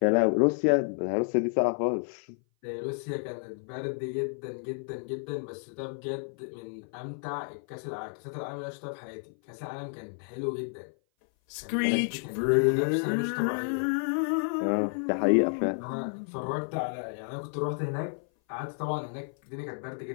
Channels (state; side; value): silent; right; 56 dB below the other